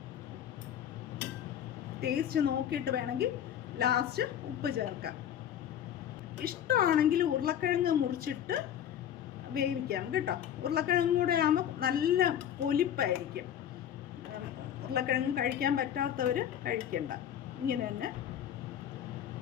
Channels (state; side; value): quieter; right; 10.0 dB